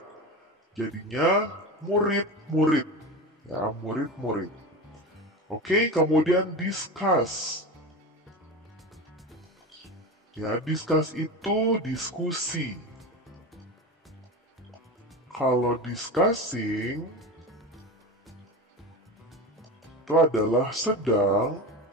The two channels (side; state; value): both; normal; correlation 0.26